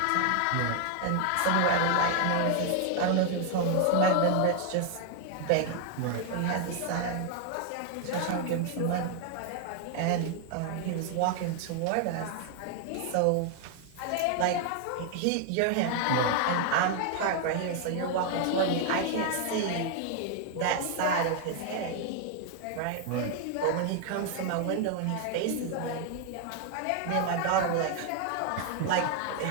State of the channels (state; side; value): different; both; correlation 0.00